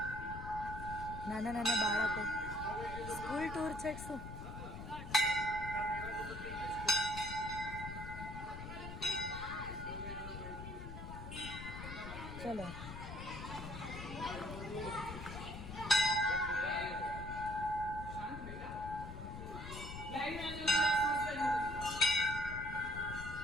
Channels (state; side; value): noise; left; rumble, 8 dB below the sound